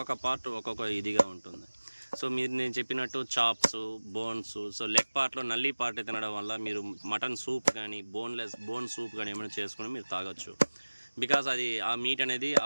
పార్ట్ ఒక్కొక్క ఇదిగా ఉంటుంది. సో మీరు నేను చెప్పినట్టు చాప్స్, బోన్స్, సో లెగ్ పార్ట్లో నల్లి పార్ట్ తినడం వల్ల మీరు మటన్ సూప్ కానీ బోన్ సూప్ కానీ ఏమైనా చేసుకుని మీరు తాగొచ్చు. బికాస్ అది ఆ మీట్ అనేది,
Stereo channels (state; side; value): inverted; both; correlation -1.00